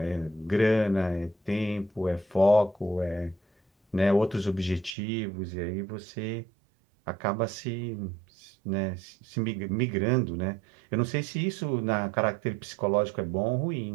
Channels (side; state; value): left; drops out; at 5.0 s